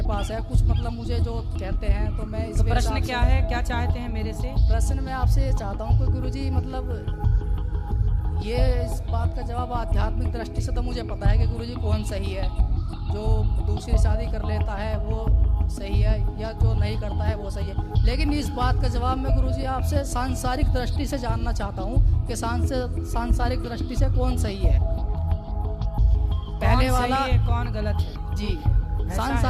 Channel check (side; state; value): both; identical; correlation 1.00